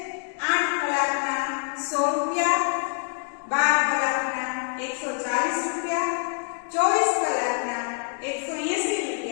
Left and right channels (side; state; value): right; silent; 61 dB below the other